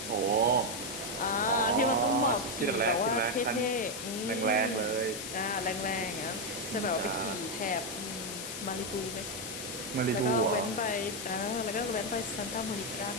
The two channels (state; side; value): noise; left; hiss, 7 dB below the sound